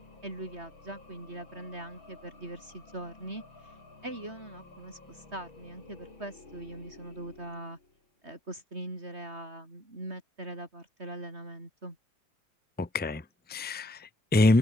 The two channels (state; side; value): normal; both; correlation 0.64